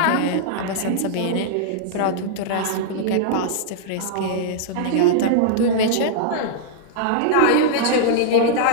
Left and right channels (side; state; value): both; different; correlation -0.02